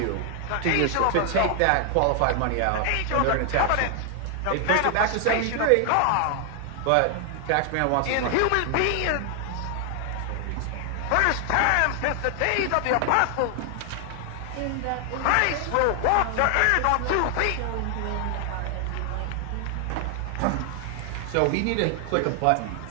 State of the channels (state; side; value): different; both; correlation 0.00